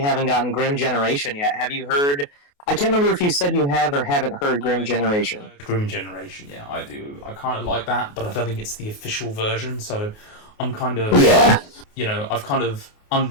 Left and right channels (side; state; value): right; late; 28 ms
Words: gotten Grim Generation yet. Have you heard... I can't remember if you said you have or haven't heard Grim Generation. Grim Generation, yeah, I do. I kind of like that, but I don't think it's the official version, so I'm kind of... Yeah. I've kind of